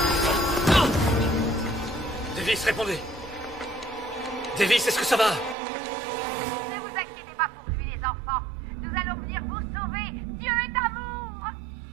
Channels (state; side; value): drops out; left; at 5.6 s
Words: Non! Davis, répondez. Davis, est-ce que ça va? Ne vous inquiétez pas pour lui, les enfants. Nous allons venir vous sauver. Dieu est amour.